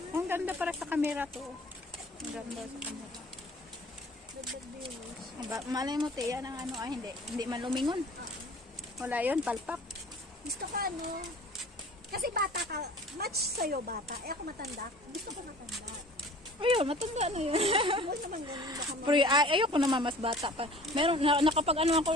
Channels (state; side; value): normal; both; correlation 0.46